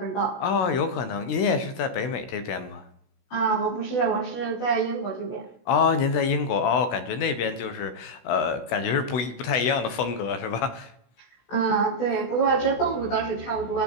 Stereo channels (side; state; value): right; late; 16 ms